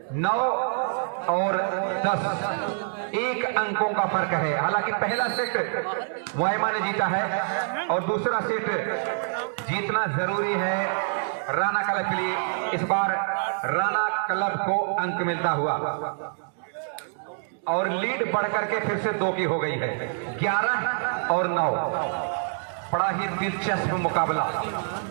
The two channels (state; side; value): silent; left; digital silence